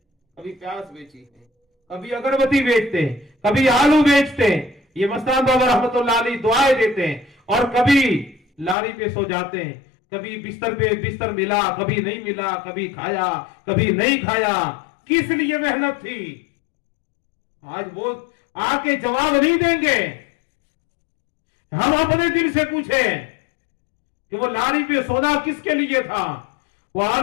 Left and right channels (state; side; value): drops out; right; at 8.8 s